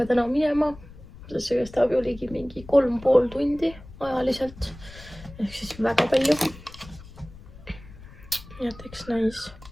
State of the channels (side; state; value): left; noise; rumble, 18 dB below the sound